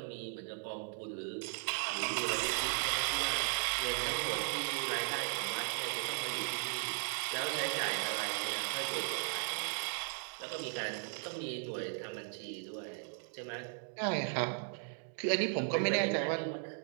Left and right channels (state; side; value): silent; left; 53 dB below the other